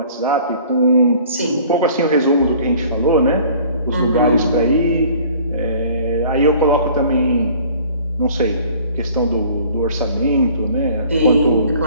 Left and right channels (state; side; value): inverted; both; correlation -0.51